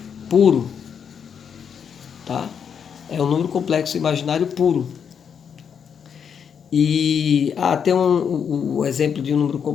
puro, tá? É um número complexo imaginário puro. E tem o exemplo de um número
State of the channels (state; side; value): quieter; right; 7.3 dB